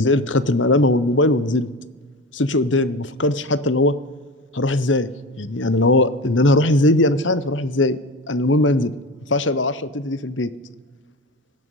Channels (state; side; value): normal; both; correlation 0.28